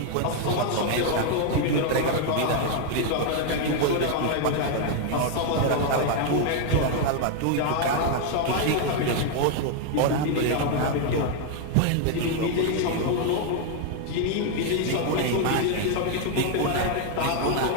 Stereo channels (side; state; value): both; different; correlation 0.00